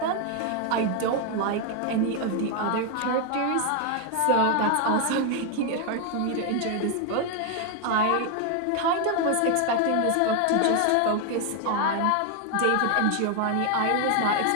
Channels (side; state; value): both; different; correlation 0.01